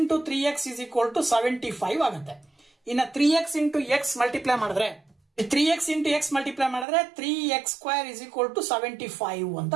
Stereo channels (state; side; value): drops out; left; at 6.9 s